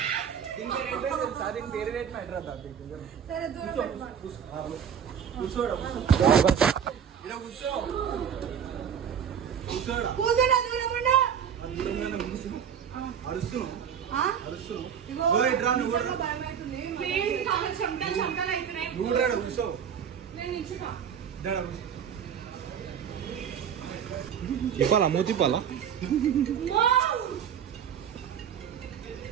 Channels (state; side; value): quieter; left; 8.1 dB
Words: దీని పేరు పెట్టిన సరే దూరం కూర్చోడా తిప్పాలా మూతి తిప్పాలా?